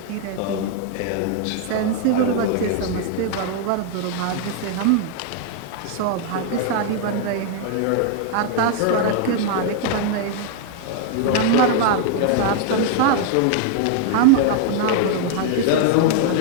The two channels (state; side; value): different; both; correlation 0.00